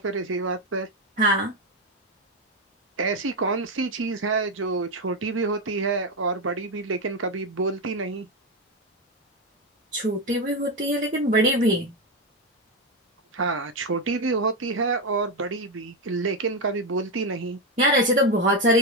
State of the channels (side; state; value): both; normal; correlation 0.09